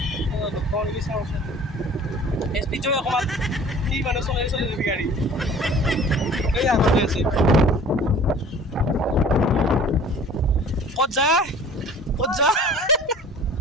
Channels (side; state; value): both; normal; correlation 0.47